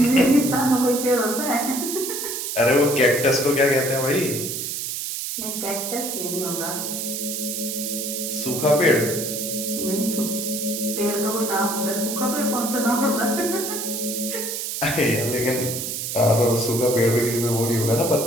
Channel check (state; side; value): noise; right; hiss, 4 dB below the sound